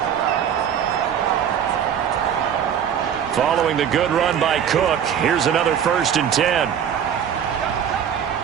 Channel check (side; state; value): left; quieter; 8.6 dB